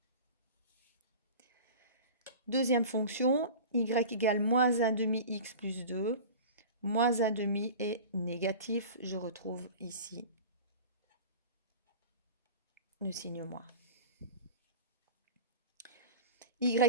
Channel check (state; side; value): inverted; both; correlation -0.35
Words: Deuxième fonction, y égale moins 1 demi x plus 2. Moins 1 demi est négatif, je retrouve ici le signe moins.